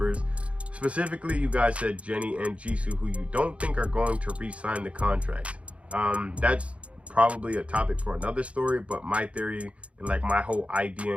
specifically you guys said Jennie and Jisoo, who you don't think are going to re-sign the contract. That's probably a topic for another story, but my theory and like my whole idea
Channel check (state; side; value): late; left; 0.063 ms